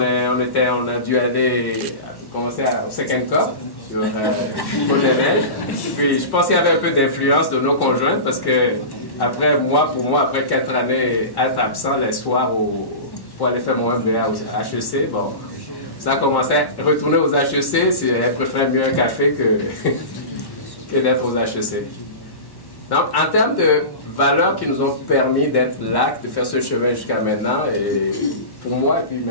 a dû commencer au Second Cup sur Côte-des-Neiges. Puis je pense qu'il y avait un peu d'influence de nos conjointes parce que pour moi, après 4 années être absent les soirs pour aller faire mon MBA au HEC, bon, ça a commencé à retourner aux HEC. Elle préfère mieux un café que d'être aux HEC. Donc, en termes de valeurs qui nous ont permis d'être là, de faire ce chemin jusqu'à maintenant, et pour moi et puis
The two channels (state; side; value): late; right; 1.1 ms